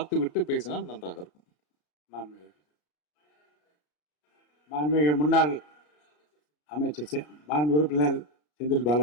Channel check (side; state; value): right; late; 33 ms